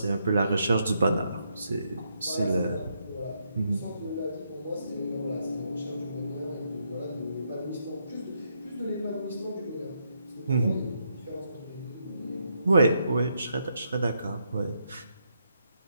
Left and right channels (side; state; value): both; inverted; correlation -0.78